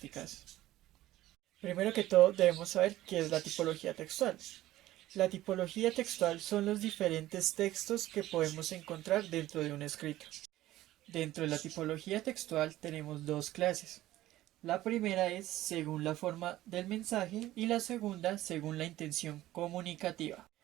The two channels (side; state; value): left; quieter; 15.3 dB